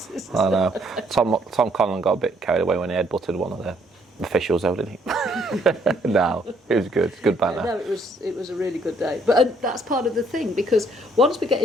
Tom Conlon got a bit carried away when he headbutted one of the officials, though, didn't he? No, it was good. Good banter. No, it was a really good day. But that's part of the thing, because once we get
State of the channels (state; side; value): normal; both; correlation 0.66